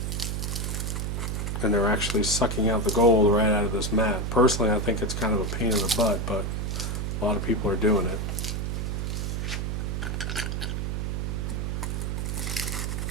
And they're actually sucking out the gold right out of this mat. Personally, I think it's kind of a pain in the butt, but a lot of people are doing it.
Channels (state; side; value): noise; right; hum, 1 dB below the sound